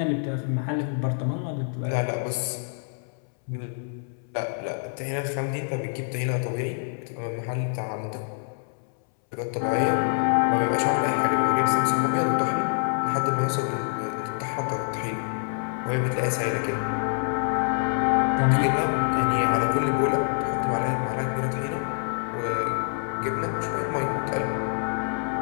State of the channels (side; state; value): right; silent; 61 dB below the other